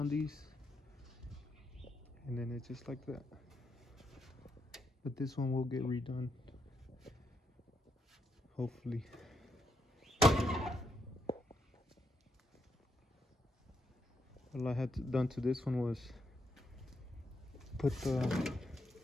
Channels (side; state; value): both; normal; correlation 0.80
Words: these. And then it's just like that. But this one will get redone, hopefully. All I had done to this one was put the